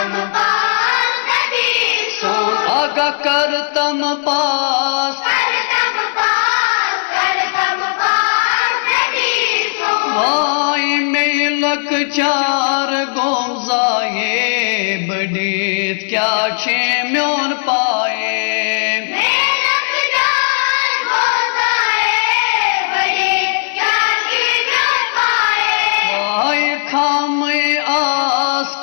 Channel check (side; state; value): right; silent; digital silence